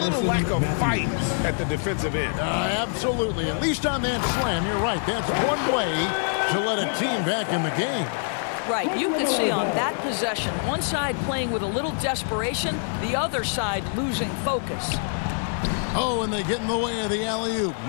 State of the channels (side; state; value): right; silent; 62 dB below the other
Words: lack of fight at the defensive end. Absolutely. At least on that slam, you're right. That's one way to let a team back in the game. Right, you can see on that possession, one side playing with a little desperation, the other side losing focus. Oh, and they get in the way of the alley-oop.